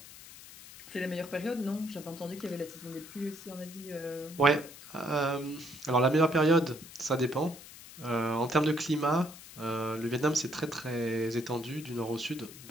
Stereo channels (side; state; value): left; noise; hiss, 17 dB below the sound